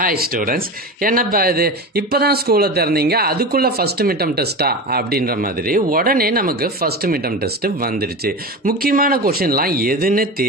students, என்னப்பா இது இப்போதான் ஸ்கூலை திறந்தீங்க, அதுக்குள்ள ஃபர்ஸ்ட் மிட்டம் டெஸ்ட்டா அப்படின்ற மாதிரி உடனே நமக்கு ஃபர்ஸ்ட் மிட்டம் டெஸ்ட் வந்துடுச்சு. முக்கியமான கொஷின்லாம் எதுன்னு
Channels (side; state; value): both; normal; correlation 0.26